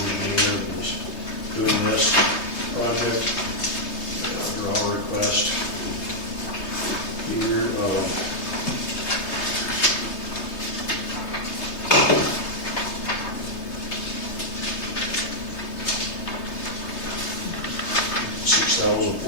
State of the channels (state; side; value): late; right; 3.3 ms